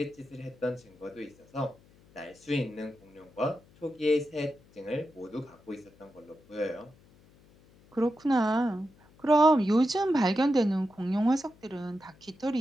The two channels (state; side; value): noise; left; hum, 28 dB below the sound